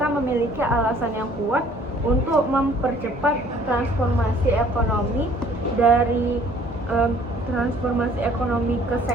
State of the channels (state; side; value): normal; both; correlation 0.57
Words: memiliki alasan yang kuat untuk mempercepat transformasi ekonomi dari transformasi ekonomi ke